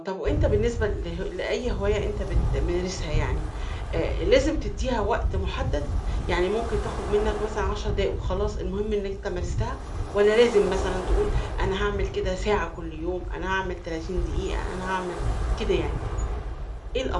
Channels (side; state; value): both; identical; correlation 1.00